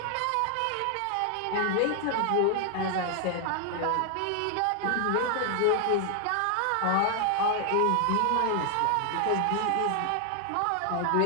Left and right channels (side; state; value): both; different; correlation 0.00